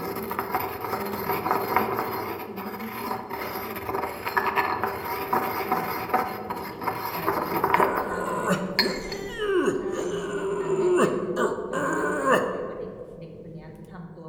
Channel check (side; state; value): both; identical; correlation 1.00